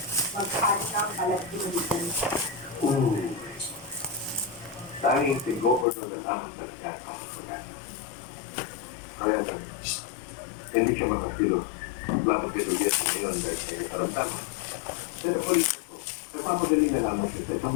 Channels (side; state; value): right; drops out; at 5.9 s